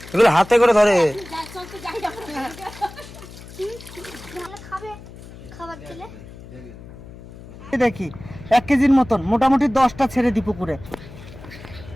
এগুলো হাতে করে ধরে যা চল তো যাই যাবো এই দেখি 1 কেজির মতন মোটামুটি 10টা ছেড়ে দি পুকুরে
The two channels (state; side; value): noise; left; hum, 17 dB below the sound